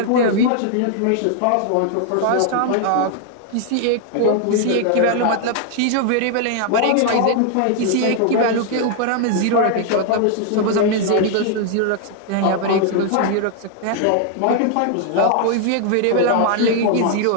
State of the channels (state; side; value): different; both; correlation 0.00